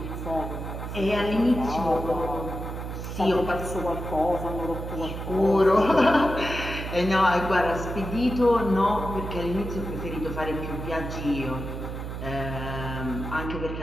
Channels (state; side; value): noise; right; hum, 6 dB below the sound